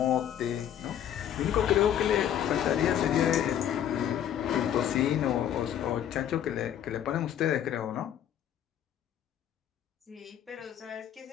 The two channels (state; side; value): quieter; right; 10.3 dB